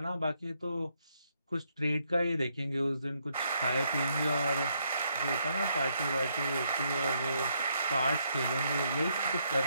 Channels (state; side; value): inverted; both; correlation -0.75